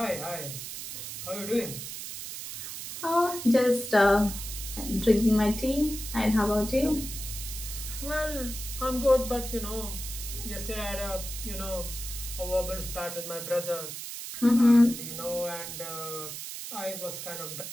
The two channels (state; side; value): noise; right; hiss, 8 dB below the sound